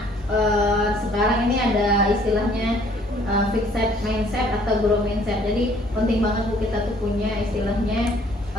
sekarang ini ada istilahnya fixed mindset atau guru mindset. Jadi penting banget Bu kita tuh punya istilahnya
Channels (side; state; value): both; normal; correlation 0.60